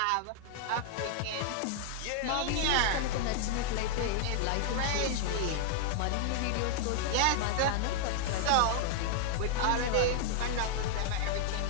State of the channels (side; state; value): both; different; correlation 0.00